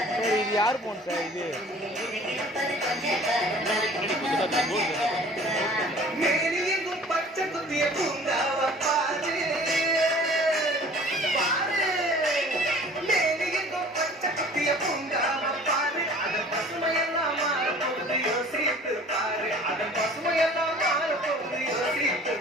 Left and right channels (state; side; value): normal; both; correlation 0.48